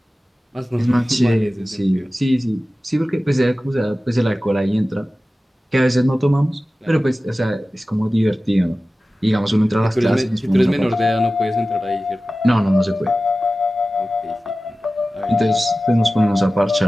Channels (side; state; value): both; normal; correlation 0.96